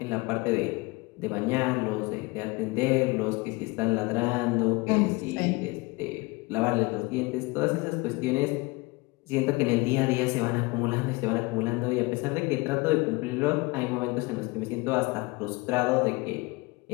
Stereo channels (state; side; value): quieter; right; 24.8 dB